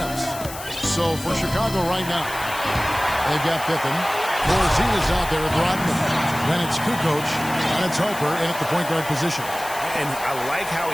So for Chicago right now, they've got Pippen. Corzine is out there with Rodman. Then it's Kukoc, and it's Harper in at the point guard position. And I like how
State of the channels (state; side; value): noise; left; hiss, 12 dB below the sound